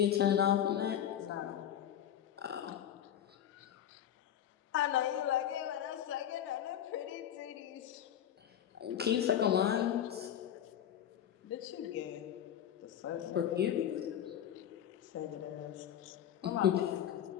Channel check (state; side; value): quieter; right; 10.2 dB